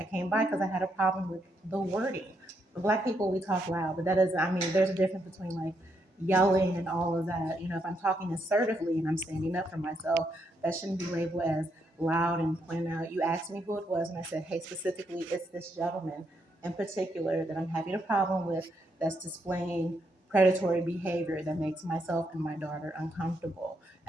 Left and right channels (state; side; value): normal; both; correlation 0.78